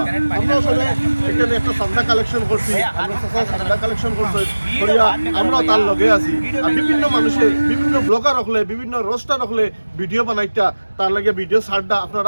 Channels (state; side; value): inverted; both; correlation -1.00